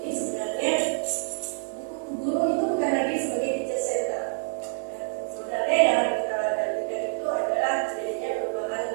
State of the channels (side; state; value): left; silent; 60 dB below the other